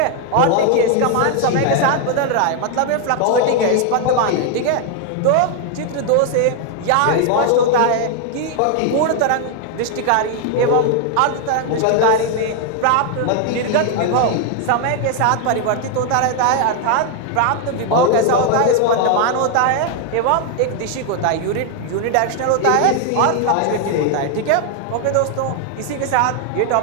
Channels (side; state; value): both; different; correlation 0.00